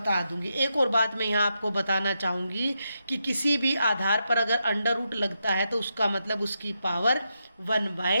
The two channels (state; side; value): inverted; both; correlation -0.84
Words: दूंगी। एक और बात मैं यहाँ आपको बताना चाहूँगी कि किसी भी आधार पर अगर अंडर रूट लगता है तो उसका मतलब उसकी पावर